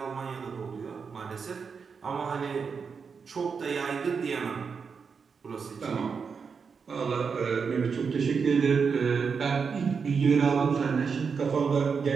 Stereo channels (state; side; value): quieter; left; 5.7 dB